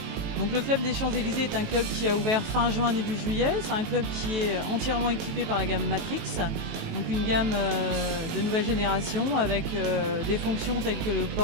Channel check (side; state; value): left; late; 18 ms